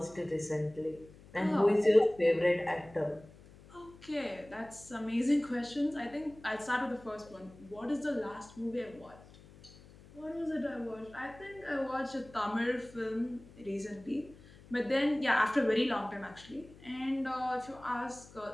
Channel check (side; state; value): left; noise; hum, 22 dB below the sound